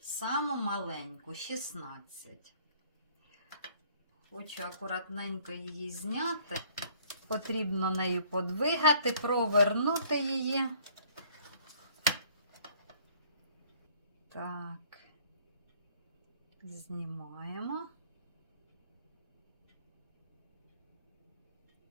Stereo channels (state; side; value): inverted; both; correlation -0.58